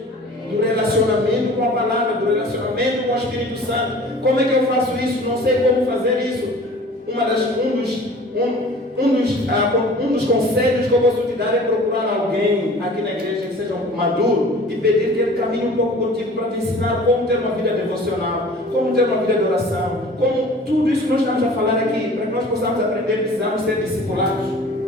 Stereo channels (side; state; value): both; normal; correlation 0.45